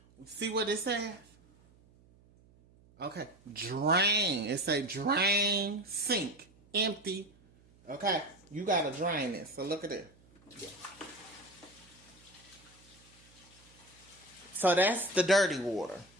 see what it says? Okay, drain. It say drain sink. Empty. Okay, you got to drain this. So look at it. So that's the dirty water.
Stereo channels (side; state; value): right; noise; hum, 28 dB below the sound